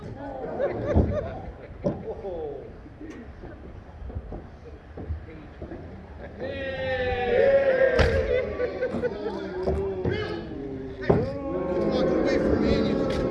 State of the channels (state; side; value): identical; both; correlation 1.00